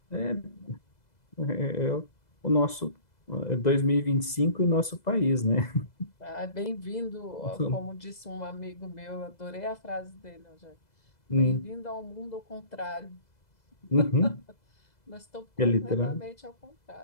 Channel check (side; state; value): right; late; 2.0 ms